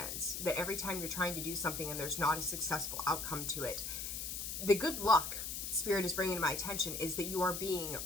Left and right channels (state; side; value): noise; left; hiss, 4 dB below the sound